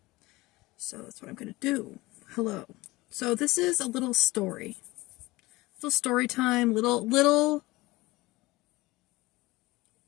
So that's what I'm going to do. Hello. So this is a little story. Little story time, little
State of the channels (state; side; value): quieter; right; 20.5 dB